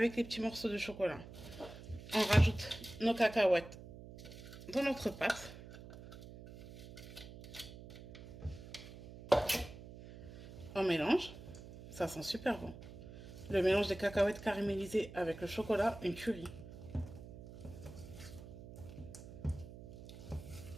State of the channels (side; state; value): right; noise; hum, 14 dB below the sound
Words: les petits morceaux de chocolat. On rajoute nos cacahuètes dans notre pâte. On mélange. Ça sent super bon. Le mélange des cacahuètes caramélisées avec le chocolat, une tuerie.